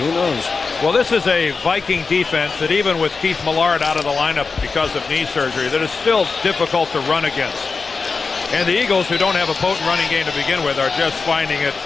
knows? Well, this is a Viking defense that even with Keith Millard out of the lineup because of knee surgery, that is still difficult to run against. And the Eagles, who don't have a potent running game to begin with, are just finding it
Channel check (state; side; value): quieter; right; 4.6 dB